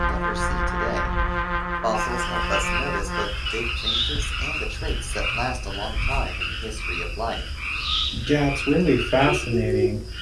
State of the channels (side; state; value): both; identical; correlation 1.00